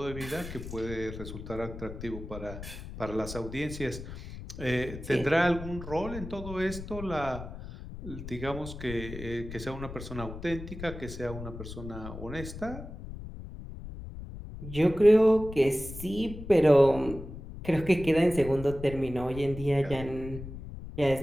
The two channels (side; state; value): left; noise; rumble, 11 dB below the sound